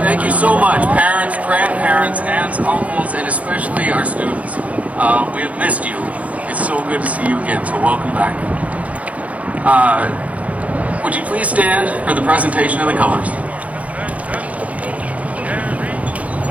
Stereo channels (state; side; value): late; left; 0.067 ms